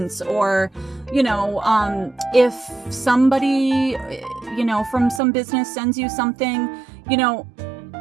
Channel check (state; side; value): drops out; left; at 5.2 s